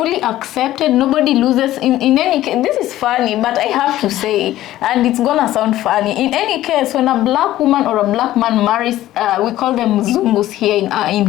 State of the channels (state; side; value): quieter; right; 14.4 dB